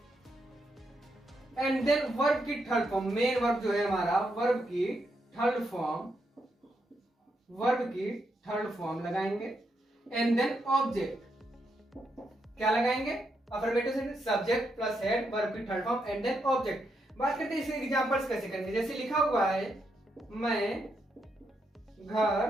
एंड देन वर्ब की थर्ड फॉर्म, मेन वर्ब जो है हमारा वर्ब की थर्ड फॉर्म, वर्ब की थर्ड फॉर्म लगाएंगे। एंड देन ऑब्जेक्ट क्या लगाएंगे, affirmative sentence subject plus had verb की third form and then object. बात करते हैं इसके एग्जांपल्स कैसे करेंगे। जैसे लिखा हुआ है मैं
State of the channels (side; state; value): both; normal; correlation 0.81